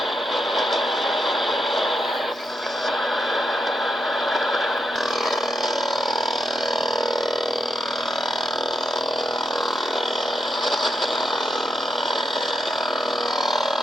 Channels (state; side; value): normal; both; correlation 0.83